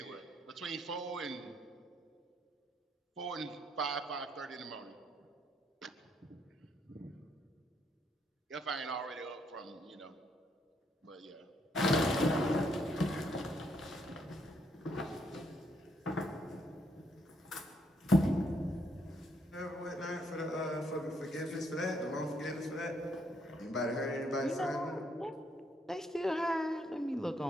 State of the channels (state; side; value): normal; both; correlation 0.73